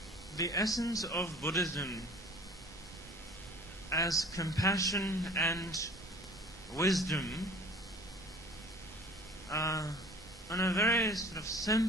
The essence of Buddhism as compassion and wisdom on a very sort of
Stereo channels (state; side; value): normal; both; correlation 0.47